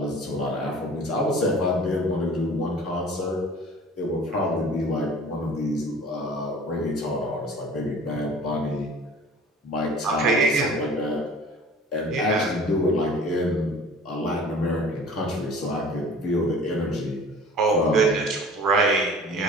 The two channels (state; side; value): normal; both; correlation 0.45